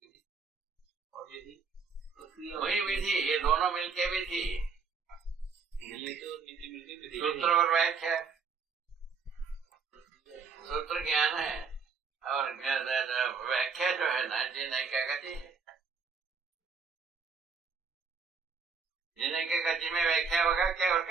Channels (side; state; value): left; quieter; 5.3 dB